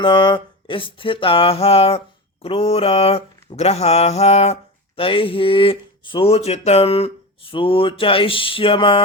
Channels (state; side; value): normal; both; correlation 0.25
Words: स्थिताः क्रूर ग्रहाः तैः सूचितं सूचयिष्यमाणञ्च